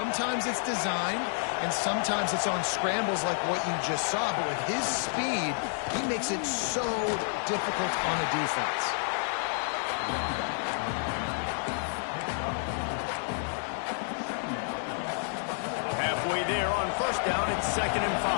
it's designed, and sometimes it's on scrambles like what you just saw. But with his speed, he makes it so difficult on a defense. Halfway there on first down, it's 2nd and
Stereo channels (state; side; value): silent; right; 58 dB below the other